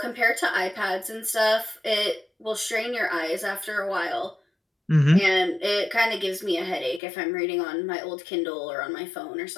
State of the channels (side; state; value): right; drops out; at 7.0 s